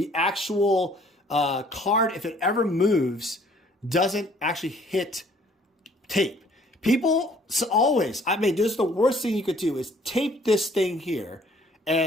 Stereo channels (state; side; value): normal; both; correlation 0.58